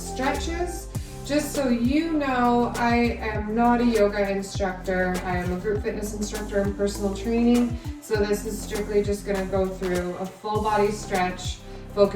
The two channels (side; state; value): both; identical; correlation 1.00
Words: Just so you know, I am not a yoga instructor. I am a group fitness instructor in personal training. So this is strictly just gonna go through a full body stretch,